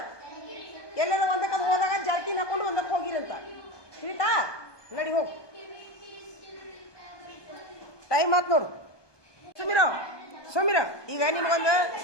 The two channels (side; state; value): right; late; 1.2 ms